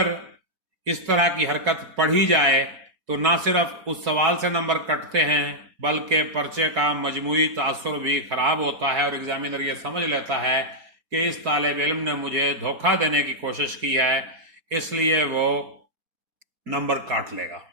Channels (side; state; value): left; late; 4.6 ms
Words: اس طرح کی حرکت پڑھی جائے تو نہ صرف اس سوال سے نمبر کٹتے ہیں بلکہ پرچے کا مجموعی تاثر بھی خراب ہوتا ہے، اور ایگزامینر یہ سمجھ لیتا ہے کہ اس طالب علم نے مجھے دھوکہ دینے کی کوشش کی ہے، اس لیے وہ نمبر کاٹ لے گا۔